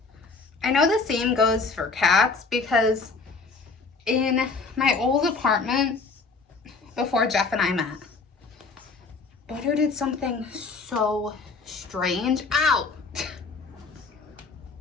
I know the same goes for cats because in my old apartment before Jeff and I met, Butter did something so strange. Ow!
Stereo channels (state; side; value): quieter; right; 4.3 dB